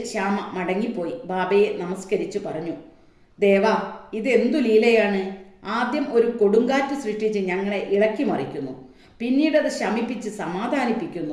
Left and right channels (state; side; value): identical; both; correlation 1.00